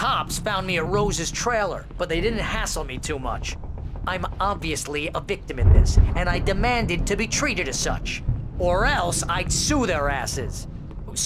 found me at Rose's trailer, but they didn't hassle me too much. I'm obviously a victim in this, and I demanded to be treated as such. Or else I'd sue their asses.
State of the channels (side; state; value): both; identical; correlation 1.00